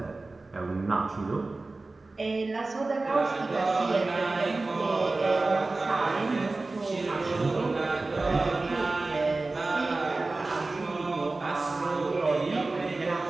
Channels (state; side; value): quieter; left; 3.3 dB